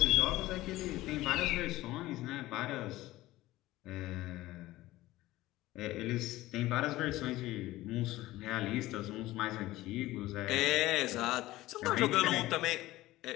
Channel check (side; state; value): right; quieter; 17.1 dB